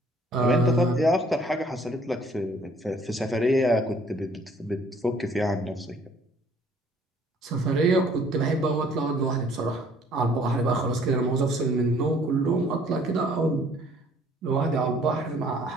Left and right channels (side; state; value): both; normal; correlation 0.58